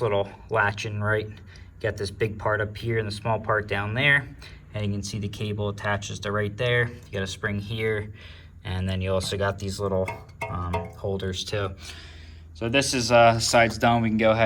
little latch in right. Got this big part up here and the small part down there, and you can see the cable attaches to right there. You got a spring here, and then you also got these little holders too. So this is side's done. We can go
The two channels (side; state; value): both; identical; correlation 1.00